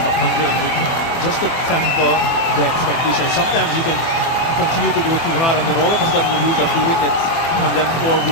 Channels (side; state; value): right; late; 24 ms